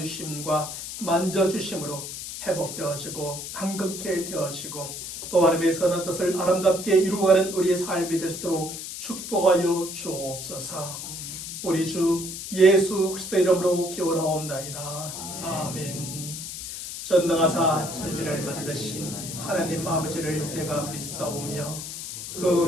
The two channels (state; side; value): noise; left; hiss, 8 dB below the sound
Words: 만져주심으로 회복되어지고 강건케 되어지고 또 하나님의 선한 뜻을 아름답게 이루어가는 우리의 삶이 될 수 있도록 축복하여 주옵소서. 우리 주 예수 그리스도의 이름으로 기원하옵나이다. 아멘. 전능하사 천지를 만드신 하나님 아버지를 내가 믿사오며 그